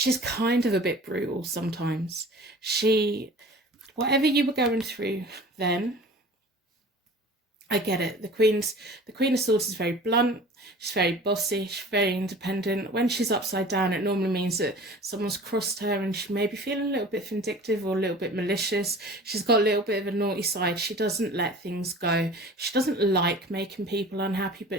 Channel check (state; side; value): normal; both; correlation 0.42